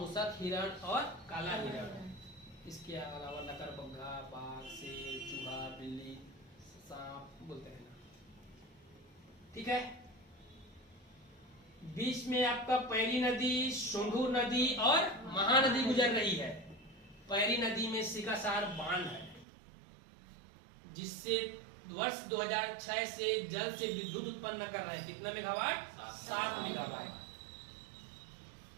हिरण और काला हिरण, इसके अलावा लकड़बग्घा, बाघ, शेर, चूहा, बिल्ली, सांप बोलते हैं ना, ठीक है। बीच में आपका पैरी नदी, सोंढूर नदी और महानदी गुजर रही है। पैरी नदी में सिकासार बांध है जिससे वर्ष 2006 से जल से विद्युत उत्पन्न कर रहे हैं। कितना मेगावाट? 7 मेगावाट।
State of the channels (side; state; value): left; drops out; at 19.5 s